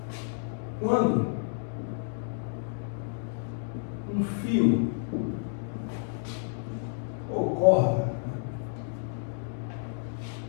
quando um fio ou corda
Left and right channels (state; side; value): silent; right; digital silence